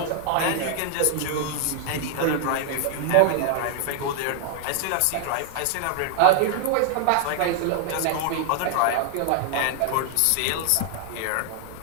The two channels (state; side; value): different; both; correlation 0.00